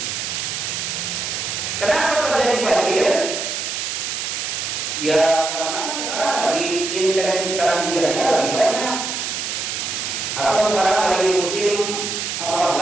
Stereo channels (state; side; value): noise; right; hiss, 3 dB below the sound